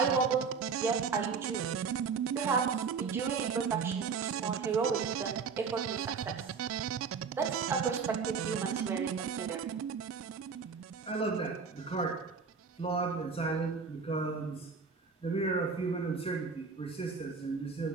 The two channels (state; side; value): quieter; left; 5.4 dB